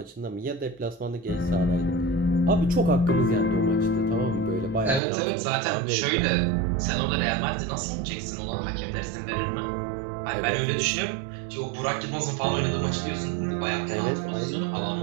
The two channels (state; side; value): drops out; left; at 5.0 s